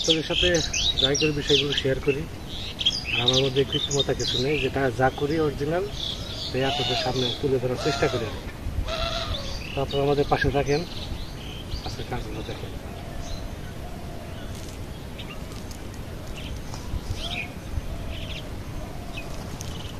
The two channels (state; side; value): identical; both; correlation 1.00